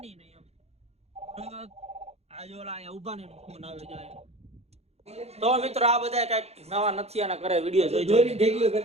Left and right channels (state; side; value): late; left; 0.30 ms